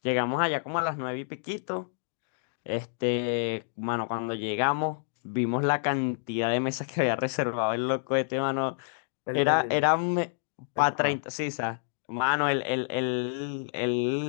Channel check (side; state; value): right; silent; digital silence